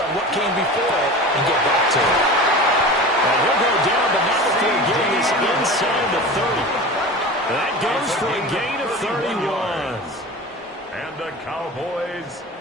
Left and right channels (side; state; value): both; normal; correlation 0.34